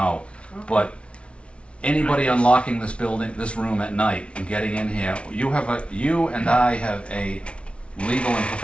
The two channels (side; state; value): right; late; 0.060 ms